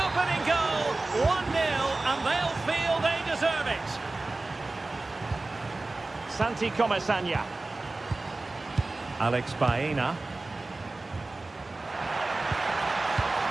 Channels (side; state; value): left; quieter; 3.2 dB